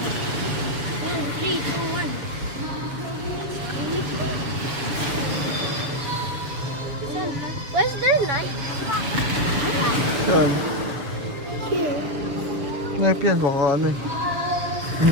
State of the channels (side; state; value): left; late; 6.9 ms